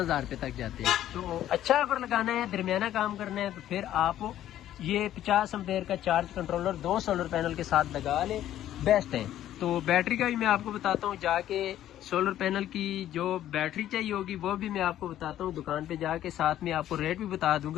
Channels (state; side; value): quieter; right; 12.2 dB